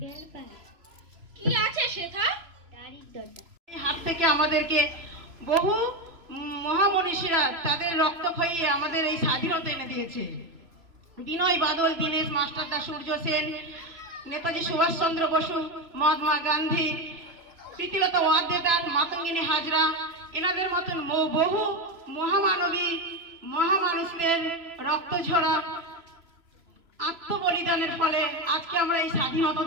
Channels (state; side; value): late; left; 3.0 ms